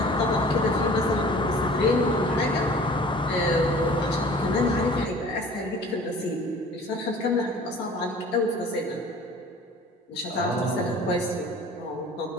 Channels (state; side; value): normal; both; correlation 0.46